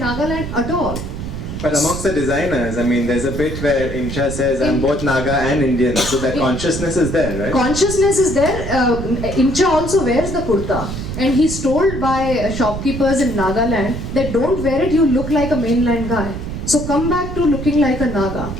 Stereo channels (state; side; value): noise; right; rumble, 7 dB below the sound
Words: at all. But amongst the designers, I mean, there's a bit where Imcha says, I'm both Naga and Indian, so that consciousness is there, right? Consciousness is there. Imcha also wears the kurta, and he's told by shopkeepers in Nagaland that don't wear it, you look like a mainland guy. So come back to looking like a Naga.